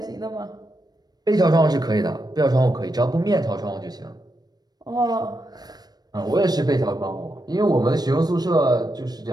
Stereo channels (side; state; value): left; late; 0.19 ms